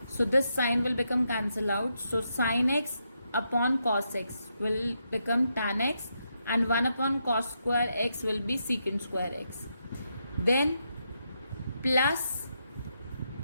So this sign will become cancel out. So sin x upon cos x will become tan x, and 1 upon cos square x will be secant square x. Then plus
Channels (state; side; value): inverted; both; correlation -0.82